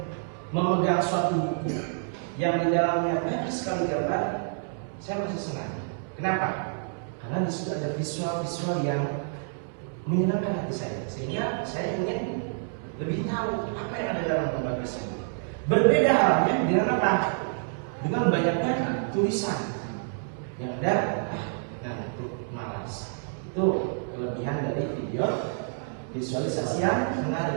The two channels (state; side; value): silent; left; digital silence